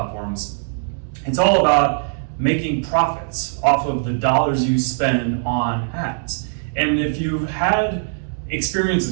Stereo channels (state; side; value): silent; left; digital silence